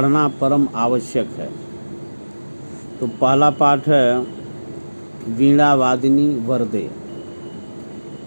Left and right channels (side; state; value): both; inverted; correlation -1.00